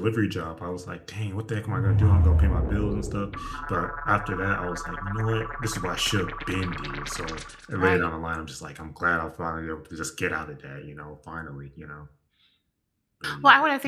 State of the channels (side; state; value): both; identical; correlation 1.00